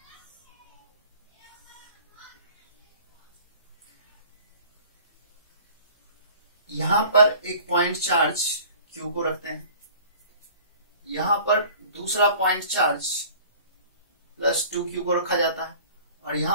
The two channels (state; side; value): inverted; both; correlation -0.48